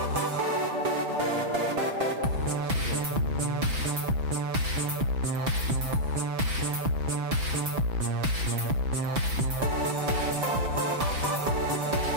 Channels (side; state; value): left; late; 6.0 ms